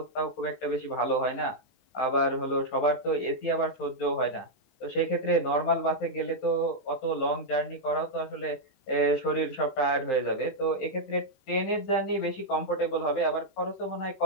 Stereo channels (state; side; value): late; right; 15 ms